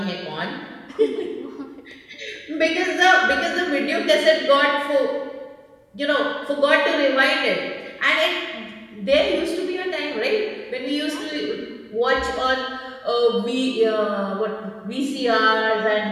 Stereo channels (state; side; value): identical; both; correlation 1.00